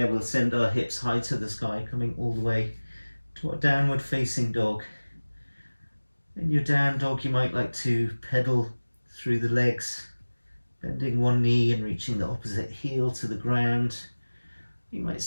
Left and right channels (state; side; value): inverted; both; correlation -1.00